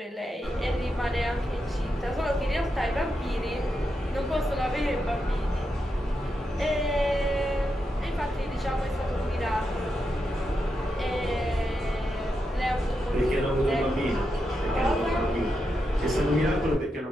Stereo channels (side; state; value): both; normal; correlation 0.86